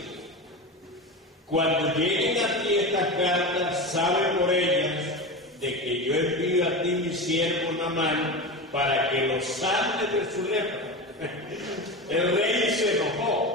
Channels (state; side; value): normal; both; correlation 0.24